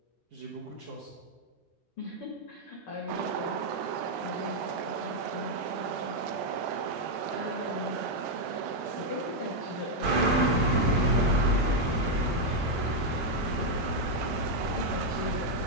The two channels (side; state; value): both; normal; correlation 0.00